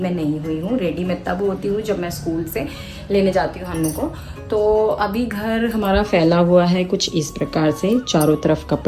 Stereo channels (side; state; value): both; identical; correlation 1.00